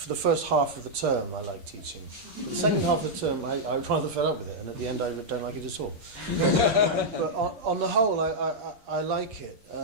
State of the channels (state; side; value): late; left; 8.5 ms